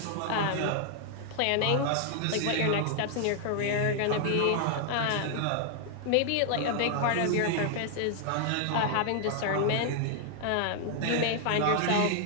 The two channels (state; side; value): different; both; correlation 0.00